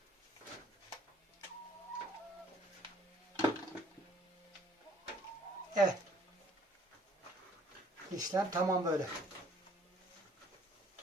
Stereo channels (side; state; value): both; normal; correlation 0.59